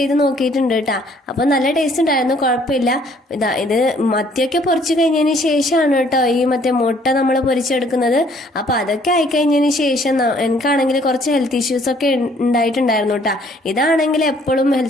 നോക്കിയിട്ടുണ്ട് കേട്ടാ. അപ്പൊ നല്ല ടേസ്റ്റ് ഉണ്ടായിരുന്നു, കുഴപ്പമില്ല. ഇത് മത്തിയൊക്കെ പൊരിച്ചു കഴിഞ്ഞതിന് ശേഷമാണ് കേട്ടോ ഈ മറ്റേ മുട്ട നമ്മൾ പൊരിച്ചെടുക്കുന്നത്. അപ്പൊ അതൊക്കെ ആയിക്കഴിഞ്ഞതിന് ശേഷം എനിക്കാണെങ്കിൽ കുറച്ച് ഹെൽത്ത് ഇഷ്യൂസ് ഒക്കെ ഉണ്ടായിട്ടുണ്ടായിരുന്നു കേട്ടാ. ഇതാണെങ്കിൽ എപ്പോഴും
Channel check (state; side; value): normal; both; correlation 0.61